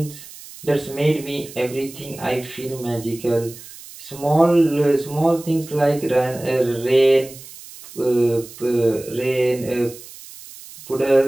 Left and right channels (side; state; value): right; noise; hiss, 17 dB below the sound